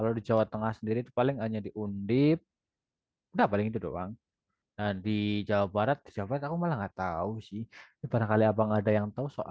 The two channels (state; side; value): identical; both; correlation 1.00